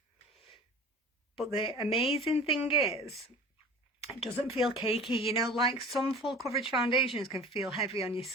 but the amazing thing is, it doesn't feel cakey, you know, like some full coverage foundations can feel heavy on your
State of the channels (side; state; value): both; normal; correlation 0.41